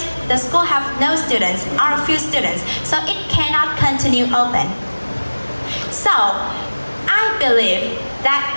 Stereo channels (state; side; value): inverted; both; correlation -1.00